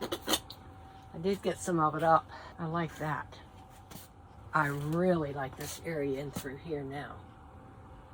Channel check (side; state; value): both; identical; correlation 1.00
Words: I did get some of it up. I like that. I really like this area in through here now.